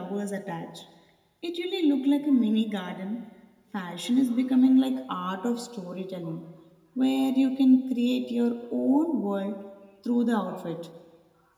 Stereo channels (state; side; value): identical; both; correlation 1.00